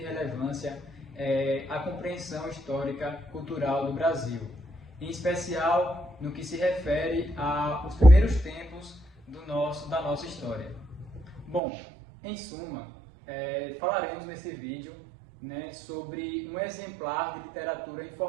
a compreensão histórica cultural do Brasil, em especial no que se refere aos primeiros tempos da nossa história. Bom, em suma, falaremos nesse vídeo, sobre um exemplar de literatura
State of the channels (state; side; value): drops out; left; at 11.6 s